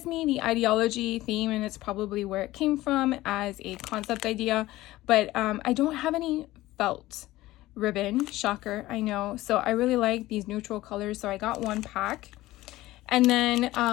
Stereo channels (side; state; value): right; quieter; 17.1 dB